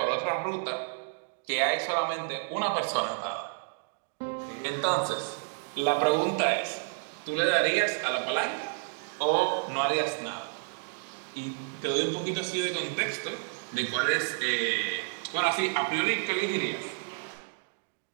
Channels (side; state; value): left; silent; digital silence